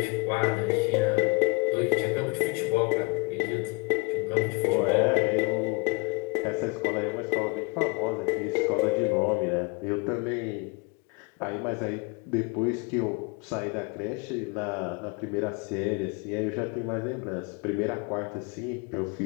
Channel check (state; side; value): quieter; right; 29.0 dB